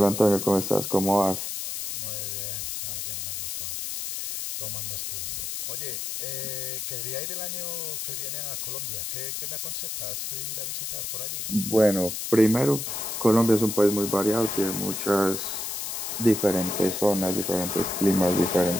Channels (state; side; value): noise; left; hiss, 4 dB below the sound